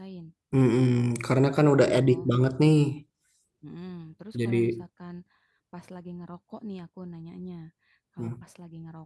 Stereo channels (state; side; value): identical; both; correlation 1.00